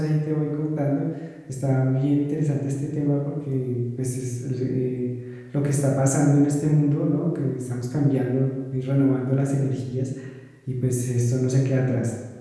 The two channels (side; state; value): both; identical; correlation 1.00